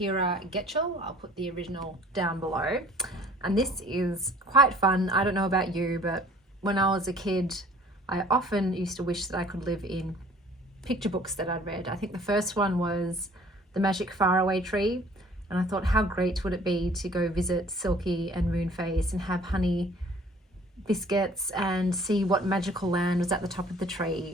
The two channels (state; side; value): normal; both; correlation 0.53